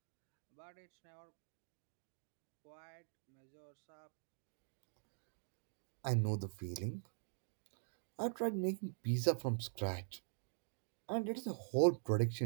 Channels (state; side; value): silent; left; digital silence